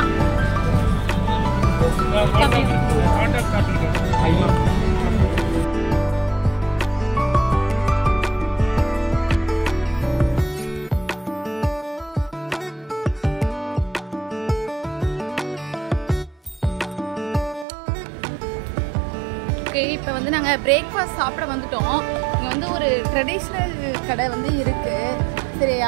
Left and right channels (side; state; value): left; drops out; at 17.7 s